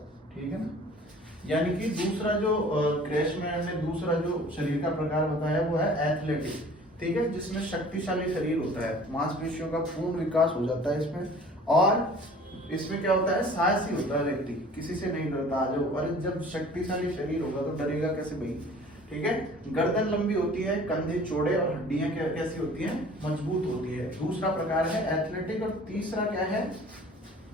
ठीक है ना। यानी कि दूसरा जो क्रेशमैन ने दूसरा जो शरीर का प्रकार बताया वो है एथलेटिक, ठीक है, जिसमें शक्तिशाली शरीर होता है, मांसपेशियों का पूर्ण विकास हो जाता है इसमें, और इसमें क्या होता है, साहसी होता है व्यक्ति, किसी से नहीं डरता। आ जाओ, अरे जब शक्तिशाली शरीर होगा तो डरेगा कैसे भाई, ठीक है। गर्दन लंबी होती है, कंधे चौड़े और हड्डियां कैसी होती हैं, मजबूत होती है। दूसरा प्रकार है एथलेटिक। और तीसरा क्या है,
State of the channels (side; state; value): both; normal; correlation 0.48